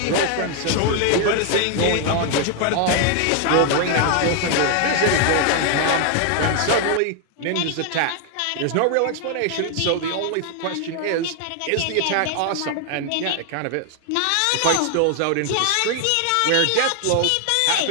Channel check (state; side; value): different; both; correlation 0.00